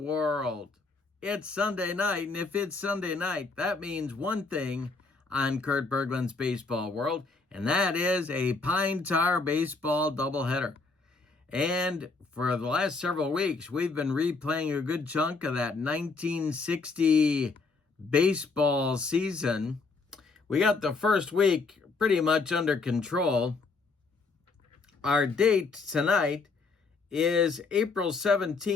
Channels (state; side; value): quieter; right; 4.1 dB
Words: It's Sunday night, and if it's Sunday night, that means one thing on Kurt Berglund's Baseball World, and that is a Pine Tar baseball doubleheader. And for the last several weeks, we've been replaying a good chunk of that 1960 baseball season. We got the first week pretty much under control. Our date tonight is April